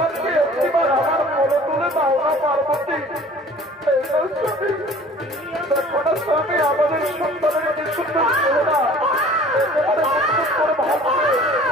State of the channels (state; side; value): normal; both; correlation 0.48